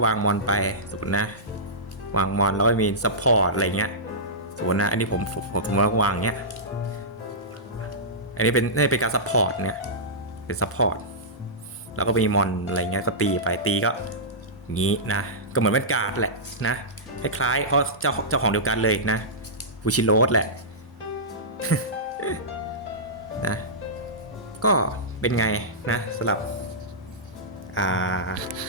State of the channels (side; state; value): both; normal; correlation -0.16